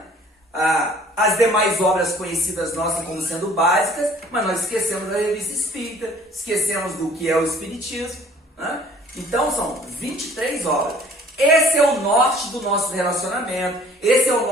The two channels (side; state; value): both; normal; correlation 0.54